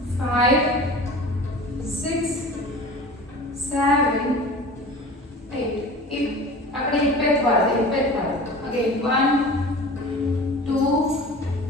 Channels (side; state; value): both; normal; correlation 0.38